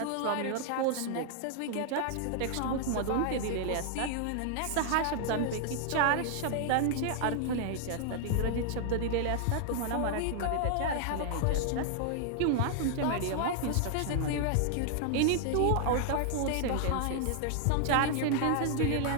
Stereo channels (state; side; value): different; both; correlation 0.00